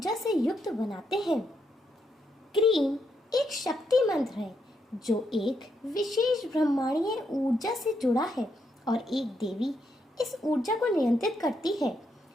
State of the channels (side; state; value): both; normal; correlation 0.79